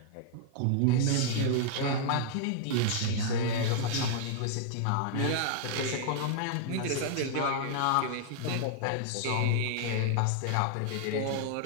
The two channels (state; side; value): different; both; correlation -0.01